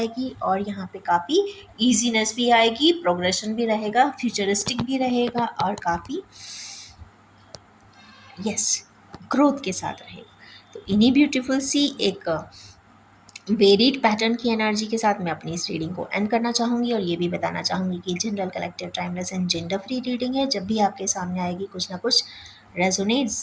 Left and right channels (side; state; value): both; identical; correlation 1.00